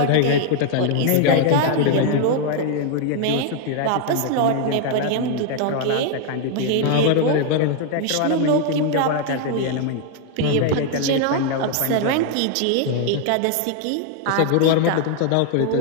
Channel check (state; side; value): different; both; correlation 0.00